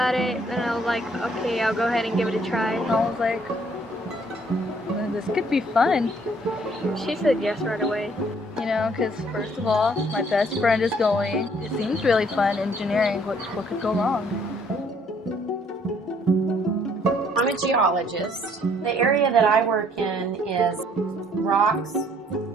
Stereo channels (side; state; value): both; normal; correlation 0.63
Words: it, and I was like, okay, I'll go ahead and give it a try. I was like, well, this could be fun. She said yes right away. You know, because first of all, my best friend is going. It seems really fun, engineering. What could go wrong? I'm a geologist. The area that I work in is rocks